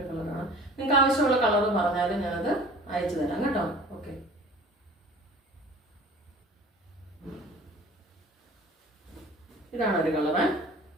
കളറാണ്. നിങ്ങൾക്ക് ആവശ്യമുള്ള കളർ പറഞ്ഞാലും ഞാനത് അയച്ചു തരാം കേട്ടോ. ഓക്കെ, ഇതാണ് ഒരു കളറ്.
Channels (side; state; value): both; normal; correlation 0.45